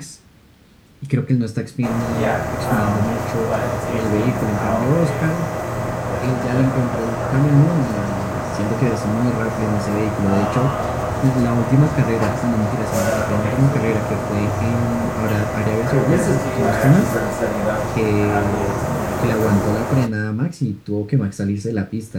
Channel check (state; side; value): identical; both; correlation 1.00